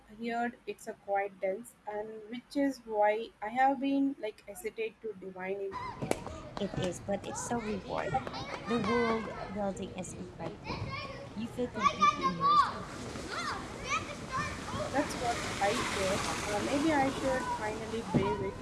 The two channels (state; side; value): identical; both; correlation 1.00